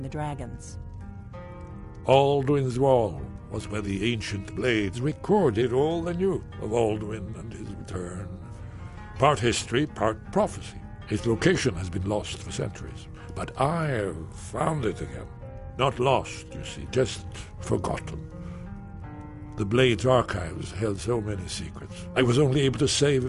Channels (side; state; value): both; identical; correlation 1.00